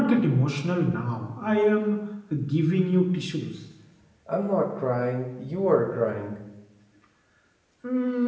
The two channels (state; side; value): identical; both; correlation 1.00